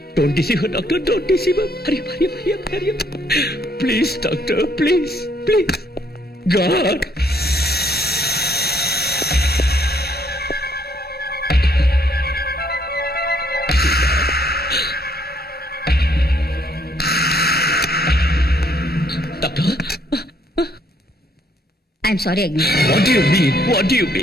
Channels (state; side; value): normal; both; correlation 0.68